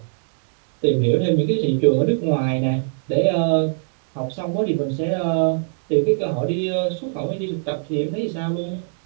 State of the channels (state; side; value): silent; left; digital silence